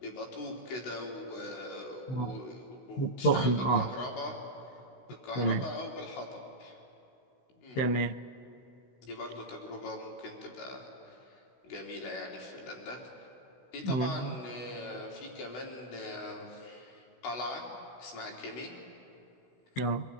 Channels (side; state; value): right; late; 16 ms